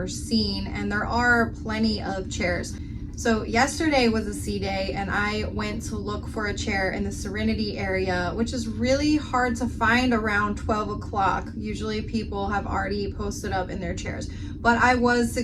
seen, and there are plenty of chairs. So yesterday was a sea day and I went to look for a chair in the Serenity area, which is really hard to find around 12 o'clock. Usually people have already posted up in their chairs, but I was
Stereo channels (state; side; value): identical; both; correlation 1.00